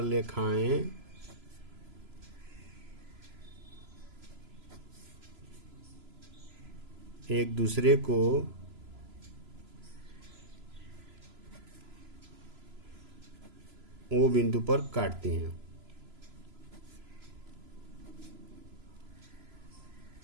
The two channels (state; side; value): late; left; 3.0 ms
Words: रेखाएं एक दूसरे को ओ बिंदु पर काटती हैं।